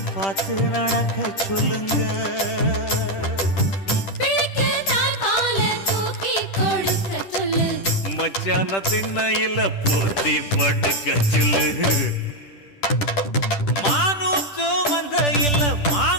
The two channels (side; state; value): right; late; 10 ms